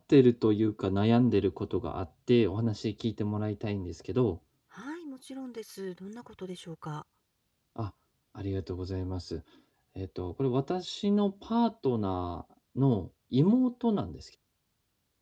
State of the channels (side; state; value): both; identical; correlation 1.00